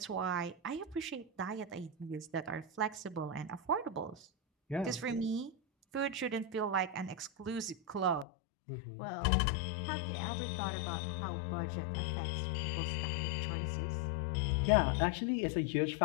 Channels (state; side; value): drops out; right; at 8.2 s